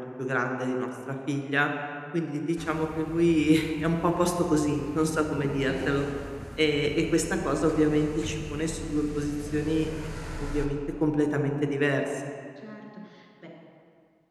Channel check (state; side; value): identical; both; correlation 1.00